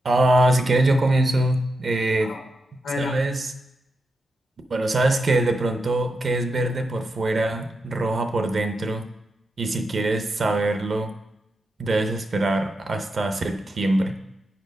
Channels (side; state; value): both; normal; correlation 0.86